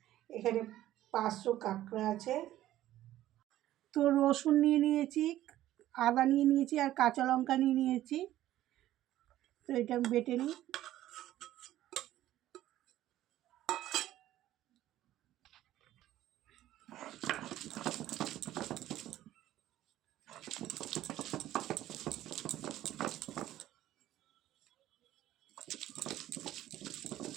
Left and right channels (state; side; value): quieter; left; 13.8 dB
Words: এখানে 500 কাঁকড়া আছে। তো রসুন নিয়ে নিয়েছি, আদা নিয়ে নিয়েছি আর কাঁচা লঙ্কা নিয়ে নিয়েছি। তো এটা আমি বেটে নিই।